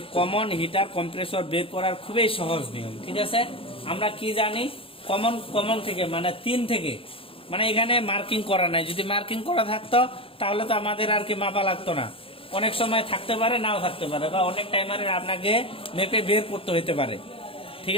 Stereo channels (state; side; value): late; right; 0.27 ms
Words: কমন হিটার কম্প্রেসর বের করার খুবই সহজ নিয়ম, ঠিক আছে। আমরা কি জানি, কমন থেকে মানে 3 থেকে, মানে এখানে মার্কিং করা নাই। যদি মার্কিং করা থাকতো তাহলে তো আমাদের আর কি মাপা লাগতো না। অনেক সময় থাকতে পারে, নাও থাকতে পারে, বা অনেক টাইমারের আপনাকে মেপে বের করতে হতে পারে, ঠিক